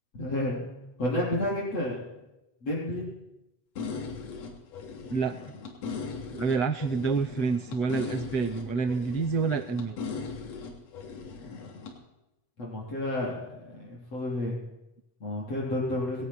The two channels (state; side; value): late; right; 8.1 ms